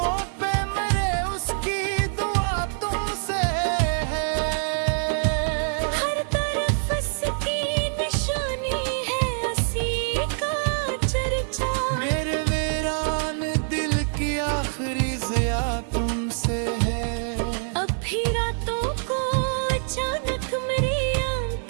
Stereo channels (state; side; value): silent; left; 62 dB below the other